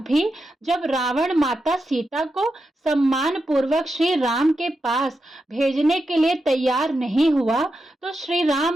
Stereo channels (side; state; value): both; normal; correlation 0.88